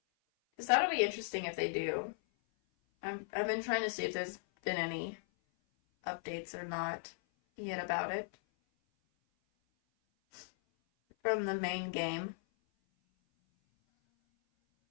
Because that'll be interesting if they do. I've been trying to see if there's been any updates or not yet about it from the main game.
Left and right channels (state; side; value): silent; right; 53 dB below the other